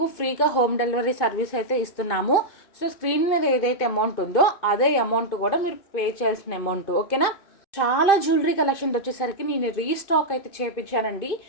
ఫ్రీగా హోమ్ డెలివరీ సర్వీస్ అయితే ఇస్తున్నాము. సో స్క్రీన్ మీద ఏదైతే అమౌంట్ ఉందో అదే అమౌంట్ కూడా మీరు పే చేయాల్సిన అమౌంట్, ఓకేనా. చాలా జ్యువెలరీ కలెక్షన్ వచ్చేసరికి నేను రీస్టాక్ అయితే చేయించానండి.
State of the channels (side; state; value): right; late; 2.5 ms